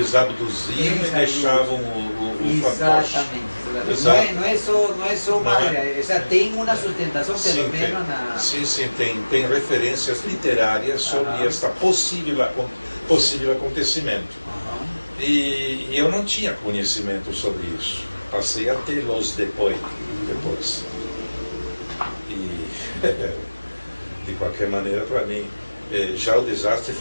abduziam e deixavam o fantoche. Exatamente. Não é só uma... tem uma sustentação, pelo menos na... Sim, tem referências literárias sobre este possível acontecimento. E eu não tinha conhecimento sobre isso. Passei a tê-los depois. E, de qualquer maneira, para mim, já o desastre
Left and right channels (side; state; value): both; inverted; correlation -1.00